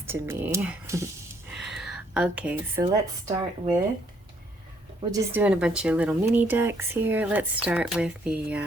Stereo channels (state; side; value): normal; both; correlation 0.68